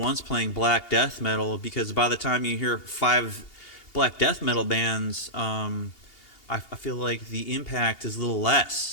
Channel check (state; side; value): late; right; 2.8 ms